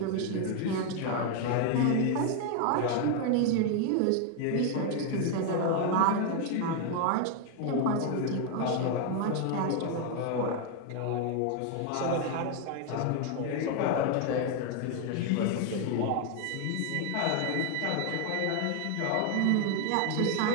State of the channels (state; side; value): different; both; correlation 0.01